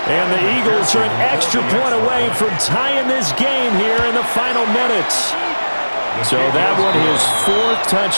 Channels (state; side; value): inverted; both; correlation -1.00